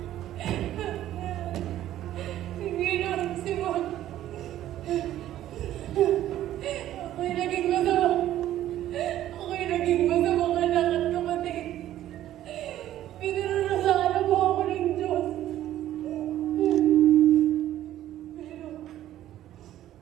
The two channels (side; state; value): left; quieter; 12.9 dB